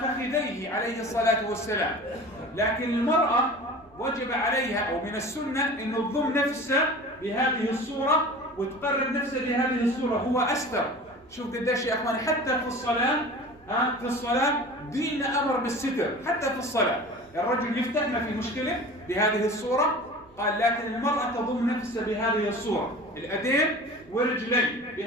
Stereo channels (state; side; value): noise; right; rumble, 29 dB below the sound